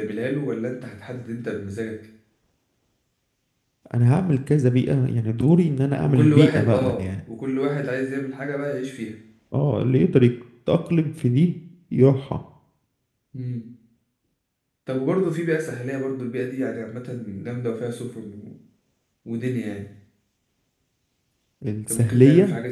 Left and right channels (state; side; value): identical; both; correlation 1.00